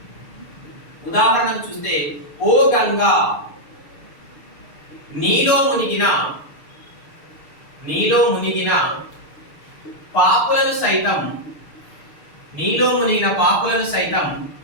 ఓ గంగా నీలో మునిగిన పాపులను సైతం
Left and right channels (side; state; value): right; late; 6.6 ms